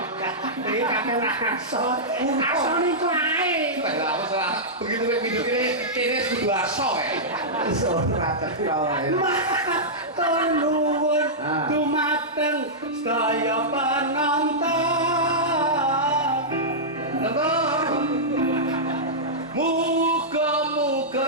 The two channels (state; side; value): normal; both; correlation -0.12